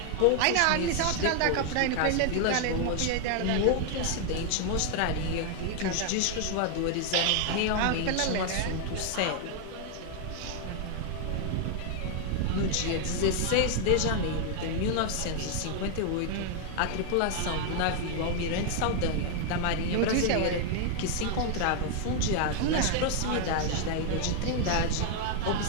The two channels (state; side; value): different; both; correlation 0.00